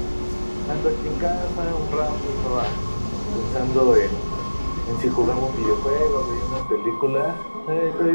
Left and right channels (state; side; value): inverted; both; correlation -1.00